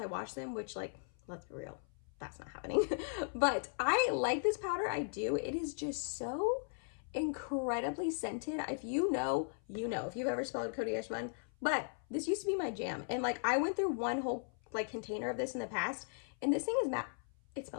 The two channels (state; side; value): silent; right; 53 dB below the other